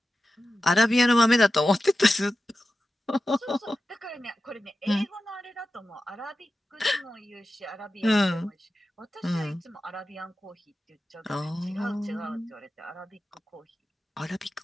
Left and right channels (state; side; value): normal; both; correlation 0.93